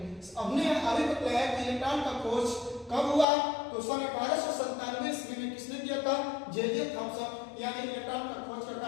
हमने अभी बताया कि इलेक्ट्रॉन का खोज कब हुआ? तो सन 1897 ईस्वी में किसने किया था? जे.जे. थॉम्सन। यानी इलेक्ट्रॉन का खोज का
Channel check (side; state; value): right; drops out; at 3.2 s